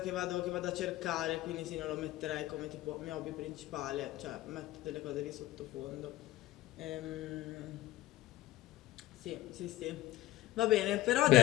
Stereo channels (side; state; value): right; quieter; 16.4 dB